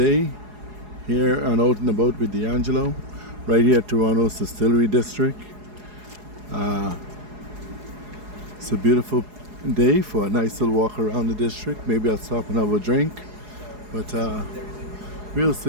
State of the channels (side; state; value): left; late; 4.8 ms